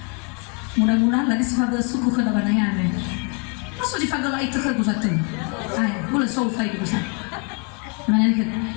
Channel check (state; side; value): quieter; right; 36.0 dB